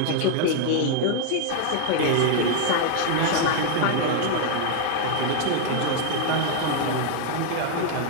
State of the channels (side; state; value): both; different; correlation 0.00